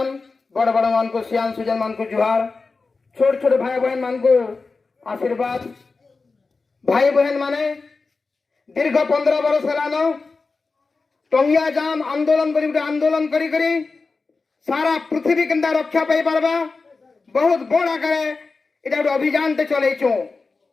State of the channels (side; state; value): right; quieter; 4.1 dB